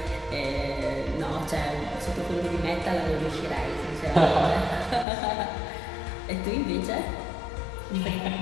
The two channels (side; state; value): right; drops out; at 5.1 s